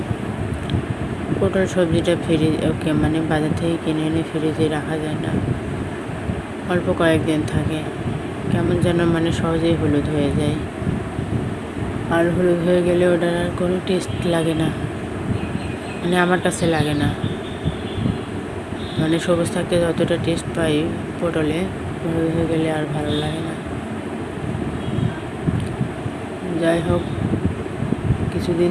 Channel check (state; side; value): identical; both; correlation 1.00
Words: পটল সবজিটা বাজার থেকে কিনে এনে ফ্রিজে রাখা যায় না, অল্প কয়েকদিন থাকে, কেমন যেন সহজেই হলুদ হয়ে যায়। আর হলুদ হয়ে গেলে ওটার আর কোনো টেস্ট লাগে না, আমার কাছে লাগে না। সবুজ থাকতে যতটা টেস্ট পাই পটলে, হলুদ হয়ে গেলে আর ভালো লাগে না। যাই হোক, কিছুদিন